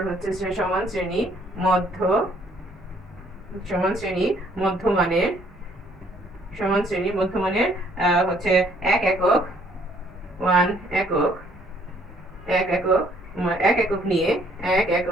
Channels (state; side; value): normal; both; correlation 0.64